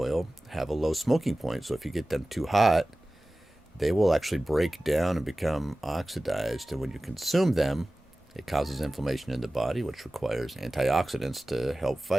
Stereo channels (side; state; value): both; normal; correlation 0.97